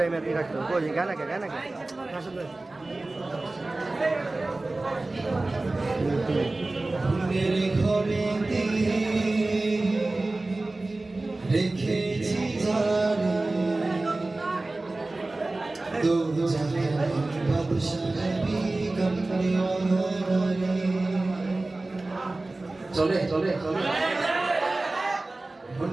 এর রাখতো কই গানা কে মেরে ঘরেতে রেখেছি জানে দো জাহান বাদশাহ বেগম নেওয়ারে চলে চলে চলে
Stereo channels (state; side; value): quieter; left; 3.0 dB